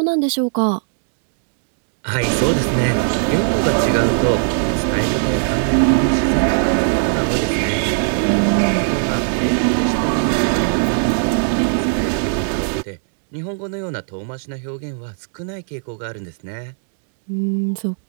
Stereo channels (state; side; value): silent; left; digital silence